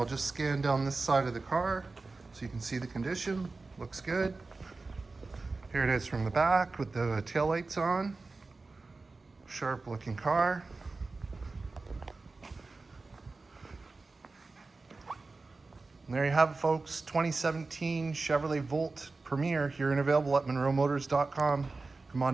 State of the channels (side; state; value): left; quieter; 3.7 dB